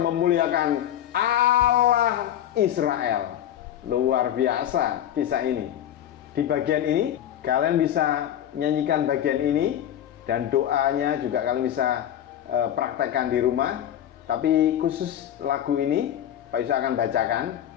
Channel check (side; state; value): right; quieter; 11.0 dB